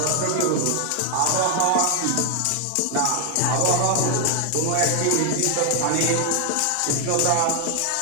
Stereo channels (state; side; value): different; both; correlation 0.00